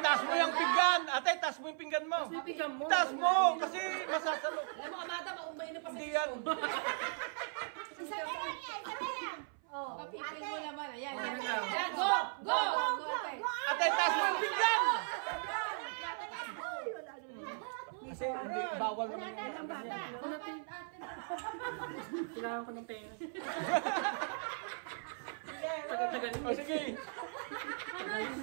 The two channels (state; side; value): silent; left; 53 dB below the other